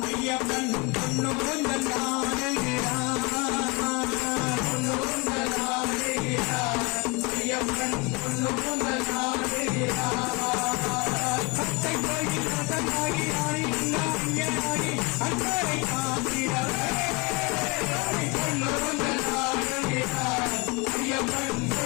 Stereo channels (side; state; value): right; quieter; 27.1 dB